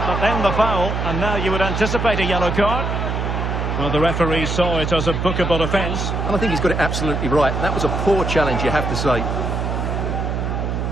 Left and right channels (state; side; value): noise; right; hum, 1 dB below the sound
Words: but then the foul, and now you would anticipate a yellow card. Well, the referee saw it as a bookable offence. And I think he's got it absolutely right. That was a poor challenge, you have to say.